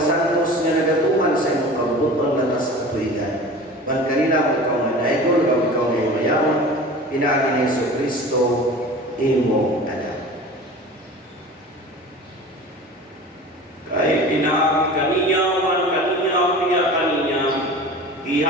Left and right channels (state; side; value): normal; both; correlation 0.38